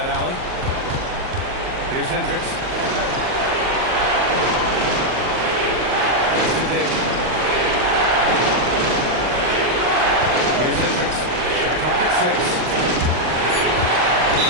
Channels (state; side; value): late; left; 39 ms